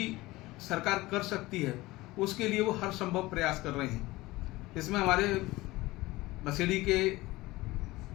सरकार कर सकती है उसके लिए वो हर संभव प्रयास कर रहे हैं। इसमें हमारे बसेड़ी के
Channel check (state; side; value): quieter; right; 19.6 dB